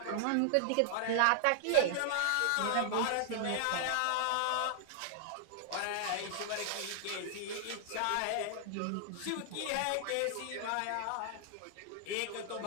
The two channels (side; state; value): both; different; correlation -0.01